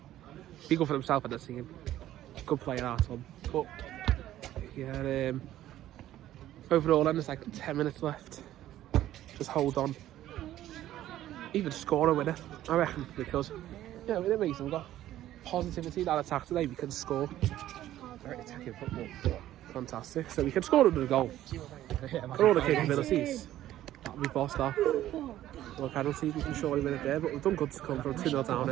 Be good for himself in the team. Good player, our Tom. But yeah, overall then there's like 10 minutes left. Just hold on. Even score a winner, I reckon, because yeah, with it Mason, we've got positivity in our attack today. We can score. Very attacking football. Fantastic. So we can score another goal. For all the capabilities that we bossed that. Well, penalty, we can surely win it there, but we've done good to come from 2-0 down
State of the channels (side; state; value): left; quieter; 13.3 dB